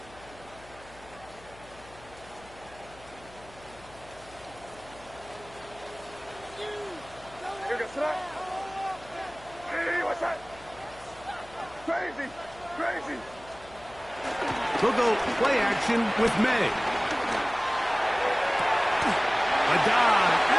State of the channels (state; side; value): noise; left; hum, 22 dB below the sound